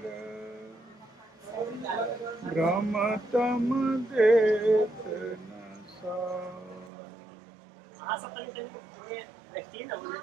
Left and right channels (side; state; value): left; drops out; at 6.9 s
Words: भ्रमतम देत न